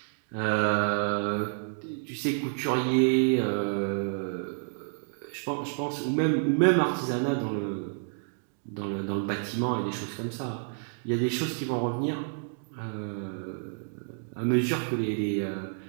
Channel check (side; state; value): left; silent; 58 dB below the other